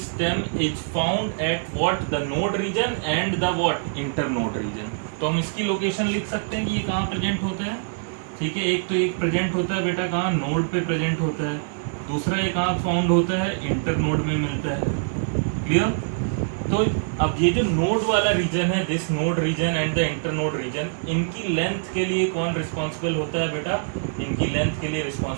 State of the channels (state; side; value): silent; left; digital silence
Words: is found at what? The node region and the what? Internode region. तो हम इसकी लोकेशन लिख सकते हैं कि ये कहाँ प्रेजेंट होता है। ठीक है, एक तो एक प्रेजेंट होता है बेटा कहाँ? नोड पे प्रेजेंट होता है। दूसरा एक कहाँ फाउंड होता है? इंटर नोड में मिलता है। क्लियर? तो अब ये जो नोड वाला रीजन है, this node region and the internode region, इनकी लेंथ के लिए कौन रिस्पॉन्सिबल होता है बेटा? इनकी लेंथ के लिए